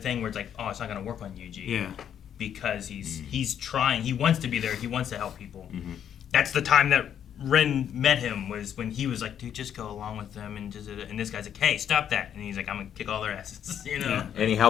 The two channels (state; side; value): quieter; right; 9.2 dB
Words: where it's like, oh, it's not going to work on Yuji. Yeah. Because he's trying. He wants to be there. He wants to help people. That's the time that Rin met him, was when he was like, dude, just go along with them. And this guy's like, hey, stop that. And he's like, I'm going to kick all their asses, you know? Yeah. And he